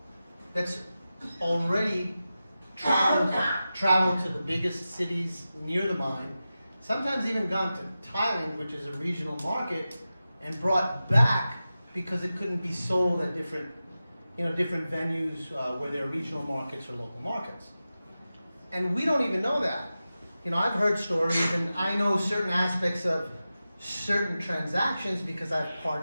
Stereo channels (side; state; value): both; inverted; correlation -0.93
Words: that's already traveled to the biggest cities near the mine, sometimes even gone to Thailand, which is a regional market, and brought back because it couldn't be sold at different venues where there are regional markets or local markets. And we don't even know that. You know, I've heard stories, and I know certain aspects of certain transactions because I've